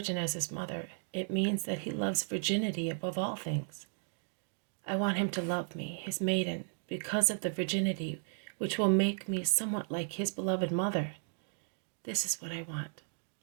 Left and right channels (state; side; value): silent; left; 55 dB below the other